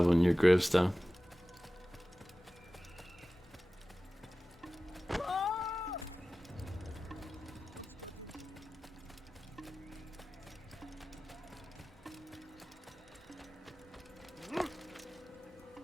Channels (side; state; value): both; normal; correlation 0.96